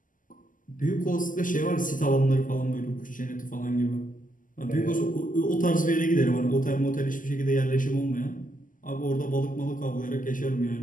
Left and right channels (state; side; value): late; right; 0.38 ms